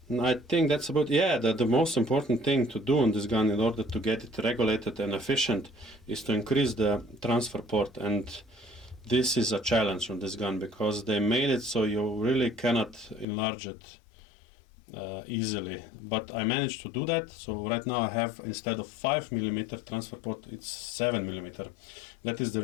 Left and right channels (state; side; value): drops out; right; at 13.2 s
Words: think that's about, the most important thing to do on this gun in order to get it regulated and efficient is to increase the transfer port, and this is a challenge on this gun, because they made it so you really cannot enlarge it easily, but I managed to do that. So right now I have, instead of 5mm transfer port, it's 7mm. That is the